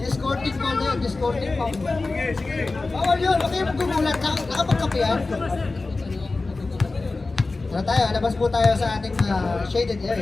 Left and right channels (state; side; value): quieter; right; 3.5 dB